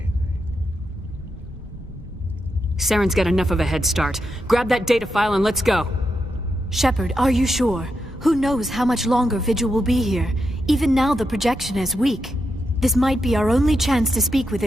Saren's got enough of a head start. Grab that data file and let's go. Shepard, are you sure? Who knows how much longer Vigil will be here? Even now the projection is weak. This might be our only chance to speak with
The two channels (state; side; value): normal; both; correlation 0.85